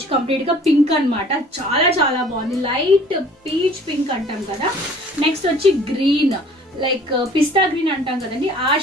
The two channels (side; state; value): both; normal; correlation 0.52